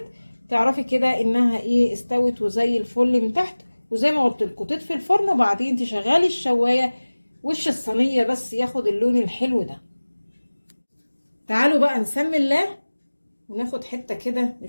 تعرفي كده انها ايه استوت وزي الفل من تحت. وزي ما قلت لكم تطفي الفرن وبعدين تشغلي الشوايه وش الصينيه بس ياخد اللون الحلو ده. تعالوا بقى نسمي الله وناخد حته كده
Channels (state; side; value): inverted; both; correlation -1.00